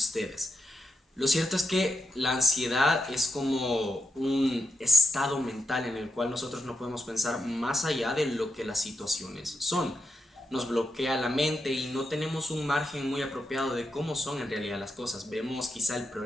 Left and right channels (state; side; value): normal; both; correlation 0.84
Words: Lo cierto es que la ansiedad es como un estado mental en el cual nosotros no podemos pensar más allá de lo que las situaciones son. Nos bloquea la mente y no tenemos un margen muy apropiado de cómo son en realidad las cosas. Vemos quizá el